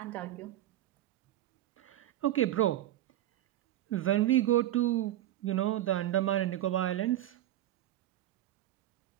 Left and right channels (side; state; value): left; quieter; 13.4 dB